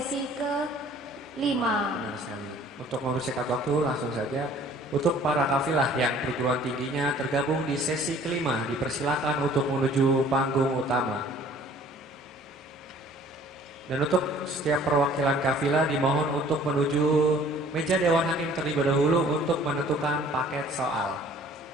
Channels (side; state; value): both; normal; correlation 0.53